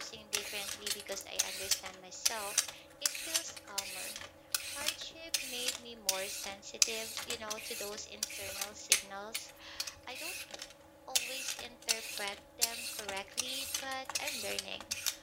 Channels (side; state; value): both; identical; correlation 1.00